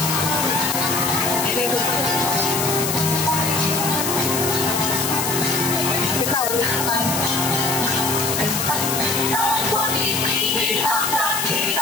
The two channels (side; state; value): left; noise; hiss, 1 dB below the sound